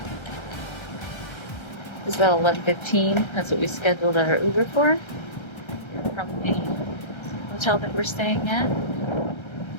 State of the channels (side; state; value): right; late; 1.3 ms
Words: It's about 11:15. That's what we scheduled our Uber for. From the hotel that we're staying at,